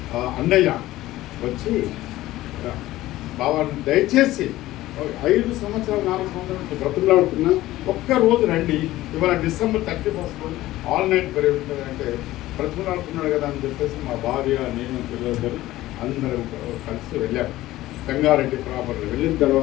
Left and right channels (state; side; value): quieter; right; 16.2 dB